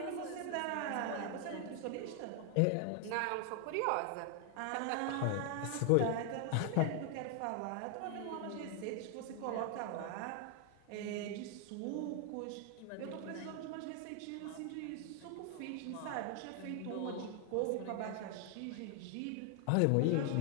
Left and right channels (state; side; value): different; both; correlation 0.00